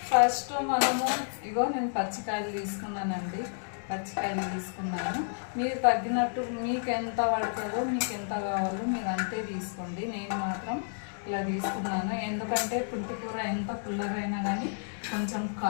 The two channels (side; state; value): right; silent; digital silence